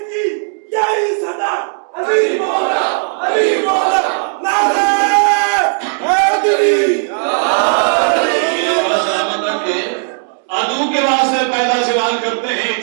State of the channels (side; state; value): left; silent; 67 dB below the other